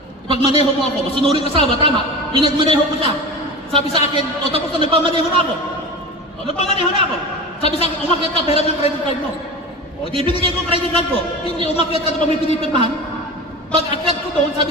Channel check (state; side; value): normal; both; correlation 0.30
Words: Ipagmaneho mo ako, masunuring asawa, tama. Pinagmaneho ko siya. Sabi sa akin, o tapos na nagpamaneho na ako. O nagpamaneho na ako. Sabi sa akin, umakyat ka, pera ng credit card mo. O di binigay ko ang credit card ko. Hindi, umakyat ka na pa may pinipirmahan. Pag akyat ko doon,